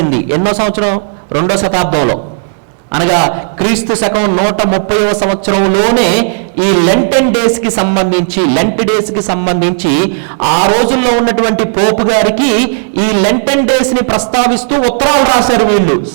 ఎన్నో సంవత్సరం? 2వ శతాబ్దంలో, అనగా క్రీస్తు శకం 130వ సంవత్సరంలోనే ఈ లెంట్ డేస్కి సంబంధించి ఆ రోజుల్లో ఉన్నటువంటి పోపు గారికి ఈ లెంటెన్ డేస్ని ప్రస్తావిస్తూ ఉత్తరాలు రాశారు వీళ్ళు.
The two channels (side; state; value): left; silent; digital silence